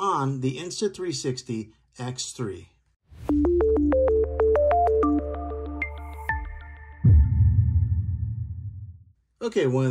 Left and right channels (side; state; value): both; identical; correlation 1.00